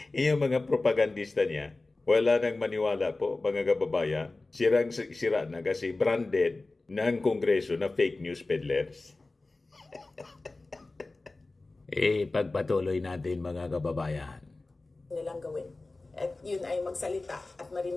Yung mga propagandista niya, wala nang maniwala po, mga kababayan. Sira na kasi branded ng Kongreso na fake news peddlers. Pagpatuloy natin, mga kababayan. Nilang gawin. At yun ay magsalita at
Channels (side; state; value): right; quieter; 3.2 dB